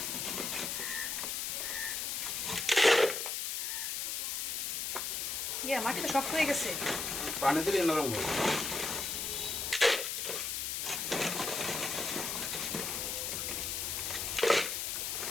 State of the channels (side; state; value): left; noise; hiss, 1 dB below the sound